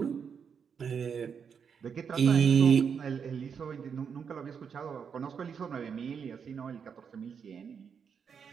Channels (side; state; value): left; quieter; 6.8 dB